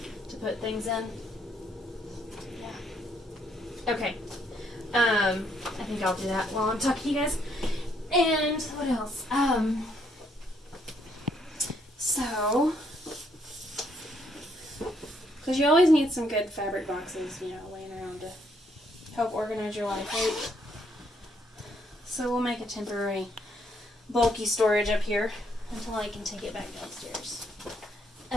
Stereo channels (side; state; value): both; normal; correlation 0.71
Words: to put things in. Yeah. Okay. I think I'll do that while I'm talking to you guys. And what else? So, because you always need some good fabric boxes, laying around to help organize your life, right? So we'll make a temporary bulky storage up here until I can take it back downstairs.